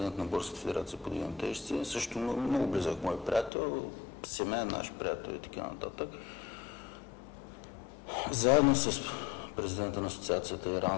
на Българската федерация по вдигане на тежести, също много близък мой приятел, семейен наш приятел и така нататък. Заедно с президента на асоциацията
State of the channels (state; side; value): drops out; right; at 3.5 s